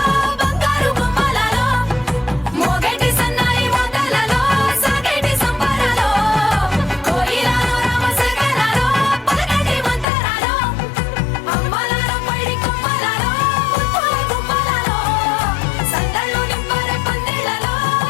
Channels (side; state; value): right; drops out; at 10.1 s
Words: బంగారు గుమ్మలలో మోగేటి సన్నాయి మోతలలో సాగేటి సంబరాలో కోయిలలో రామశకలలో పలకటి మంతరాలో అమ్మలాలో పడి కొమ్మలలో ముద్దుల గుమ్మలలో సందళ్ళు నింపరే పందిళ్ళలో